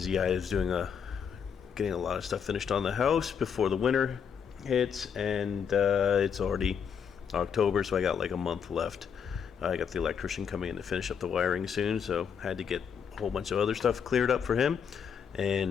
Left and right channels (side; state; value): right; quieter; 7.2 dB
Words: I was getting a lot of stuff finished on the house before the winter hits, and it's already October, so I got like a month left. I got the electrician coming in to finish up the wiring soon, so had to get a whole bunch of other stuff cleared up for him,